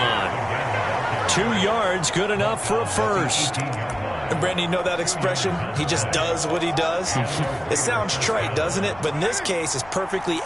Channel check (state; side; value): noise; left; rumble, 21 dB below the sound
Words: 2 yards, good enough for a first. And Brandon, you know that expression? He just does what he does. It sounds trite, doesn't it? But in this case, it's perfectly